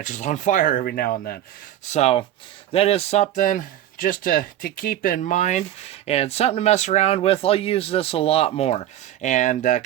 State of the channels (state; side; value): quieter; left; 12.2 dB